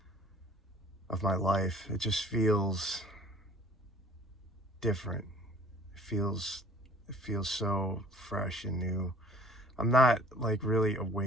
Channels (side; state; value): both; normal; correlation 0.53